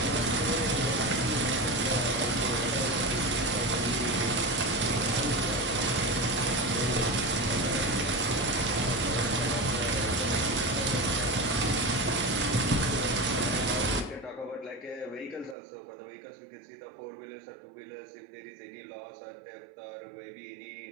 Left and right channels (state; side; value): drops out; left; at 15.6 s